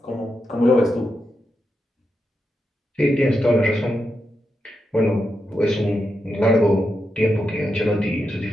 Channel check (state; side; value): normal; both; correlation 0.86